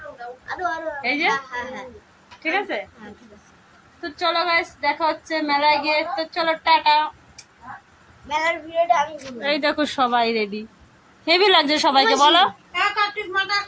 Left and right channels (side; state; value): both; identical; correlation 1.00